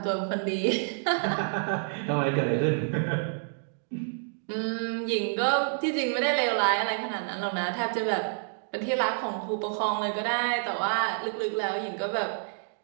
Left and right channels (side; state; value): left; silent; digital silence